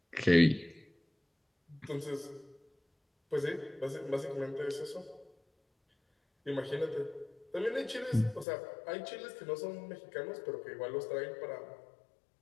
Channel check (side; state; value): right; drops out; at 8.5 s